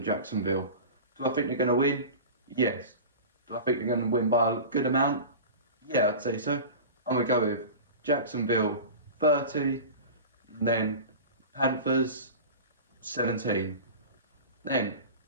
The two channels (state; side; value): inverted; both; correlation -0.33